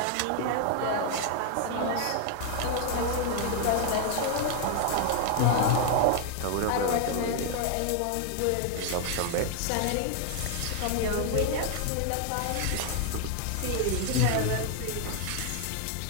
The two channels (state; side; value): different; both; correlation 0.00